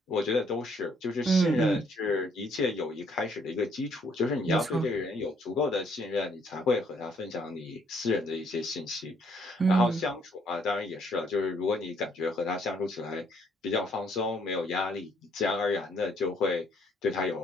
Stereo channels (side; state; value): both; normal; correlation 0.67